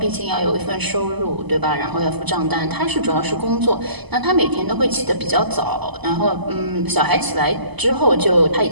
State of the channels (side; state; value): left; late; 0.99 ms